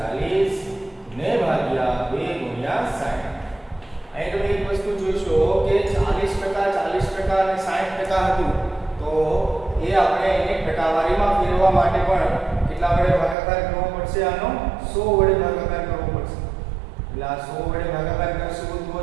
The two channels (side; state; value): left; drops out; at 13.4 s